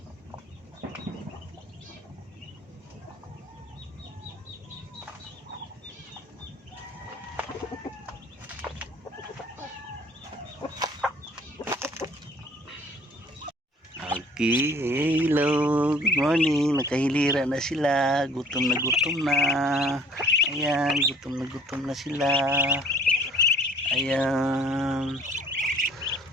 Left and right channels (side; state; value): both; normal; correlation 0.54